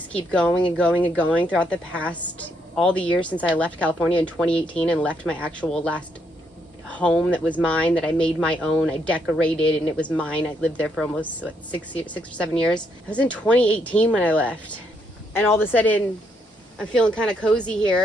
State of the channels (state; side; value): normal; both; correlation 0.75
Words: keep going and going and going throughout the past, all the years since I left California in 2018 and left my actual last home that was mine, that I made my own. I decorated, and it was mine. I lived there for almost, what, 6 or 7 years. I was in 2018 when I left. And all of a sudden, I'm feeling kind of cozy